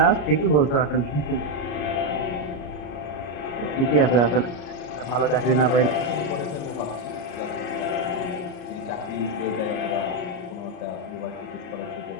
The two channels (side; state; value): right; late; 34 ms